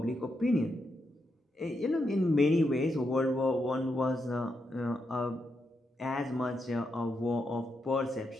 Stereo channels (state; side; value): normal; both; correlation 0.83